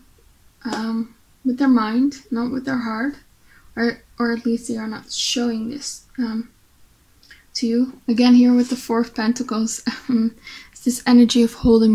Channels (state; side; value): identical; both; correlation 1.00